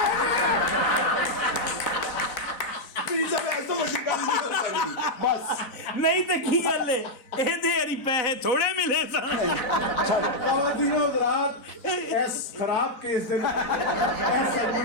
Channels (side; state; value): right; late; 4.0 ms